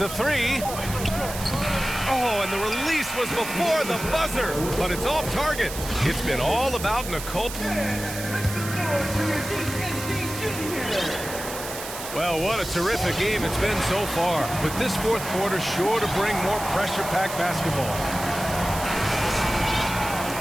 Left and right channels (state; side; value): noise; right; hiss, 9 dB below the sound